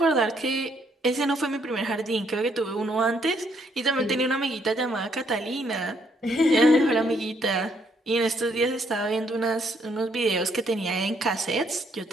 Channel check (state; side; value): normal; both; correlation 0.71